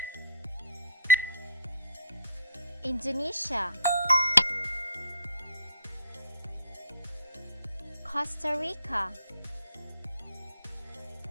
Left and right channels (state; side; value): inverted; both; correlation -0.56